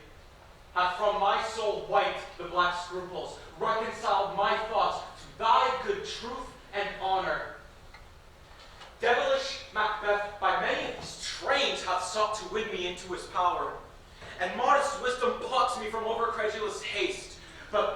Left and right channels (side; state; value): both; identical; correlation 1.00